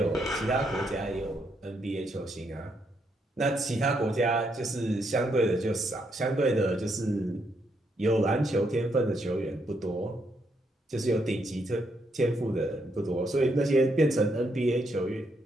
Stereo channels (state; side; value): normal; both; correlation 0.76